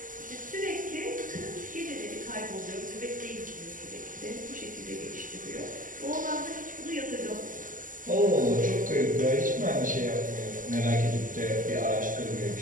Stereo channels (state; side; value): late; left; 0.38 ms